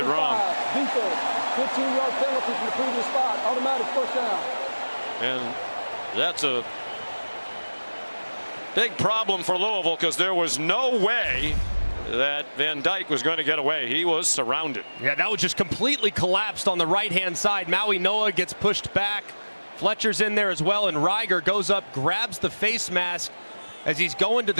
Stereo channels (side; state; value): both; inverted; correlation -1.00